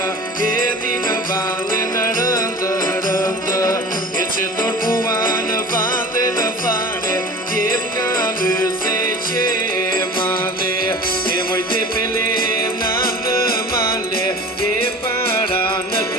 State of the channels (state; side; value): normal; both; correlation 0.39